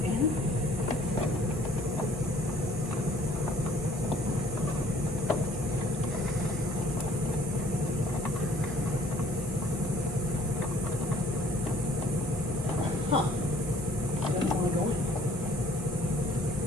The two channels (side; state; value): both; normal; correlation 0.58